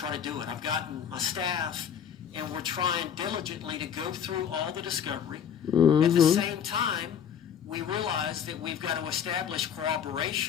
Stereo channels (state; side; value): quieter; right; 8.4 dB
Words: to do it. I've gotten my staff, and we're trying diligently to go through all the discovery. Mm-hmm. At the same time, we realize that we've got to establish